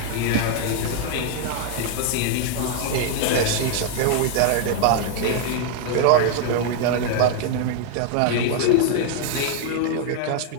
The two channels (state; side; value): different; both; correlation 0.00